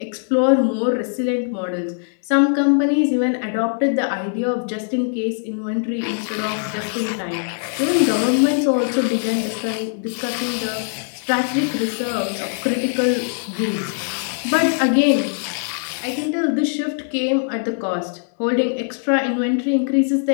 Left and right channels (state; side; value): silent; right; digital silence